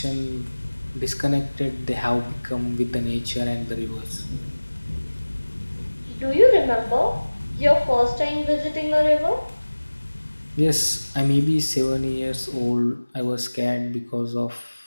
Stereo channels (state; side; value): inverted; both; correlation -1.00